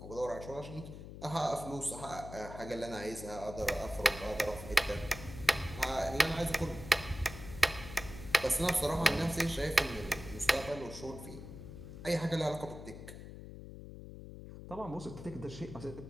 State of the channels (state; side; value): noise; left; hum, 12 dB below the sound